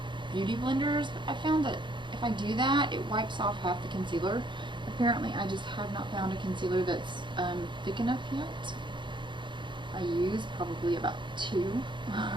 beauty blenders, but I found that if I do that, it wipes off half the concealer. Apparently, I just have not found a concealer that's thick enough yet. I use probably about 2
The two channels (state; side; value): late; left; 0.23 ms